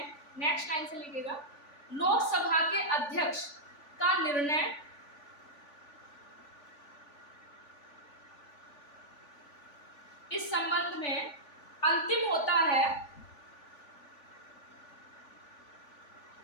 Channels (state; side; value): late; right; 3.5 ms